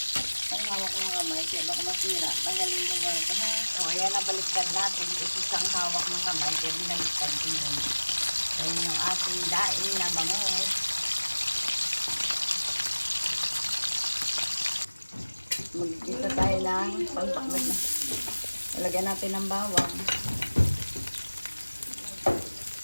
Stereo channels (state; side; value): inverted; both; correlation -1.00